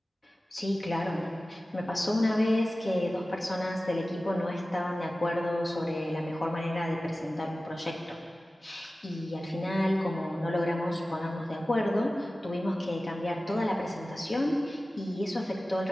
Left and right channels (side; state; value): both; normal; correlation 0.96